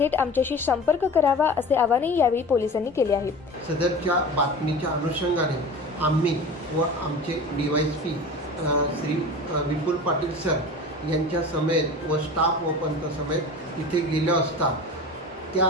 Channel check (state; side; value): normal; both; correlation 0.35